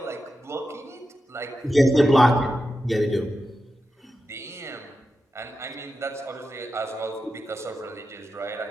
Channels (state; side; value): normal; both; correlation 0.90